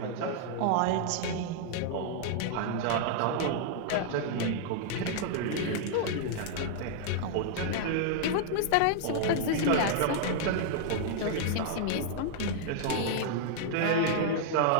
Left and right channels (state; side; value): different; both; correlation -0.01